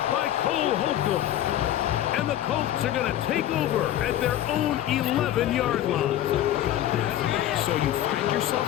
by Cole Holcomb. And the Colts are going to take over at their own 11-yard line. So you find yourself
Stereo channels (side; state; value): right; quieter; 12.4 dB